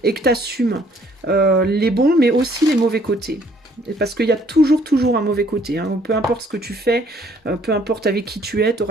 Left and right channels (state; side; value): normal; both; correlation 0.62